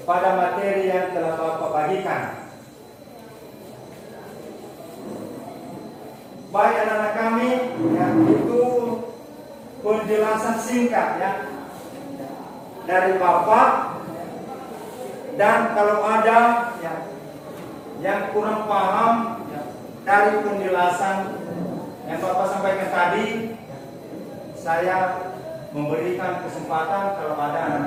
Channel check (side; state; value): both; identical; correlation 1.00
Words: pada materi yang telah Bapak bagikan. Baik anak-anak kami, yang itu penjelasan singkat ya dari Bapak. Dan kalau ada ya, yang kurang paham ya, dari penjelasan yang Bapak sampaikan tadi, saya memberikan kesempatan kalau ada